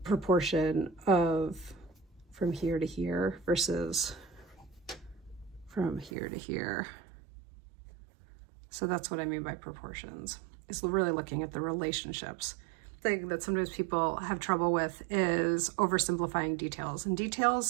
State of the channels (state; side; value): drops out; left; at 6.1 s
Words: of from here to here versus from here to here. So that's what I mean by proportions. It's really looking at the relationships. The thing that sometimes people have trouble with is oversimplifying details, and